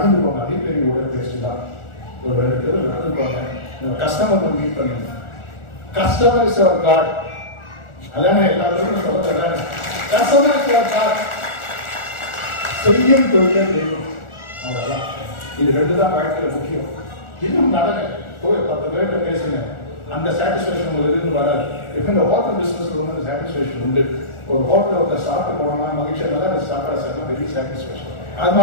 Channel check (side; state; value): right; late; 1.4 ms